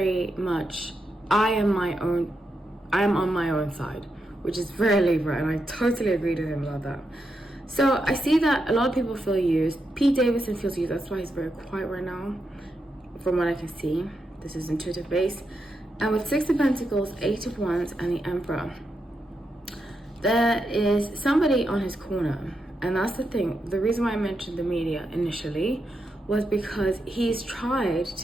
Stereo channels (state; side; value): normal; both; correlation 0.85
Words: much, I am on my own side, which is very Libra, and I totally agree with him about that. So I see that a lot of people feel used. Pete Davidson feels used. That's why he's very quiet right now, from what I can see. This is intuitive based. And with 6 of Pentacles, 8 of Wands, and the Emperor, there is somebody on his corner. And that's the thing. The reason why I mentioned the media initially was because he's tried